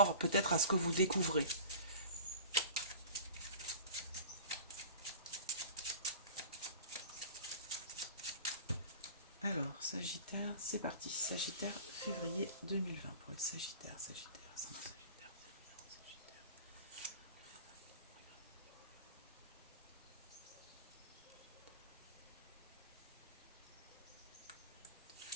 peut-être à ce que vous découvrez. Alors, Sagittaire, c'est parti. Sagittaire, février 2020 pour les Sagittaires, Sagittaire, Sagittaire.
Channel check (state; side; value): inverted; both; correlation -0.40